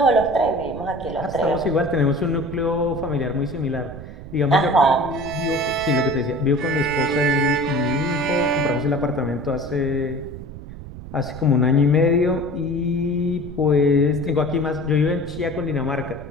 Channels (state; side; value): noise; right; rumble, 13 dB below the sound